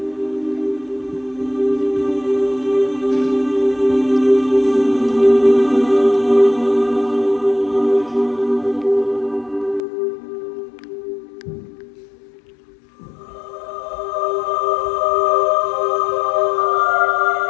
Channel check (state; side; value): drops out; right; at 9.8 s